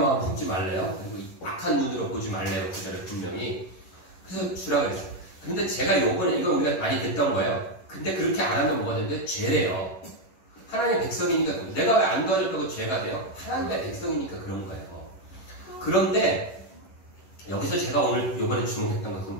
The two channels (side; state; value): right; late; 11 ms